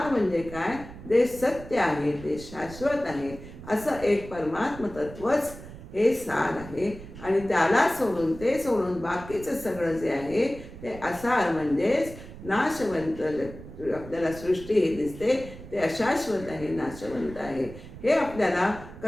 म्हणजे काय, जे सत्य आहे, ते शाश्वत आहे, असं एक परमात्म तत्वच हे सार आहे. आणि त्याला सोडून, ते सोडून बाकीचं सगळं जे आहे ते असार म्हणजेच नाशवंत. आपल्याला सृष्टी हे दिसते ते अशाश्वत आहे, नाशवंत आहे. हे आपल्याला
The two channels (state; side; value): noise; right; rumble, 14 dB below the sound